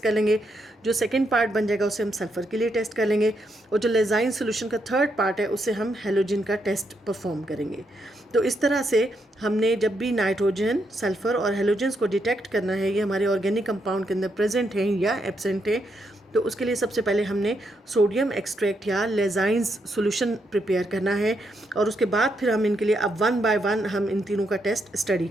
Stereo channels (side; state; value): both; normal; correlation 0.79